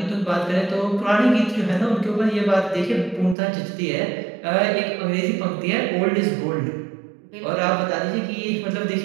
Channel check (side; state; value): left; drops out; at 3.4 s